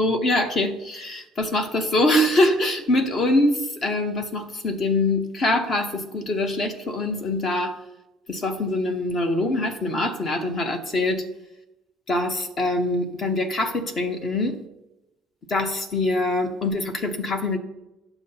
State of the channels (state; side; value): normal; both; correlation 0.55